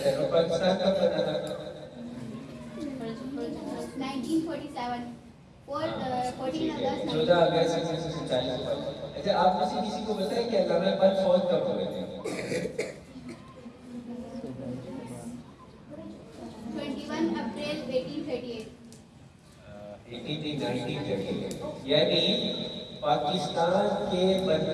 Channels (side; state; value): both; identical; correlation 1.00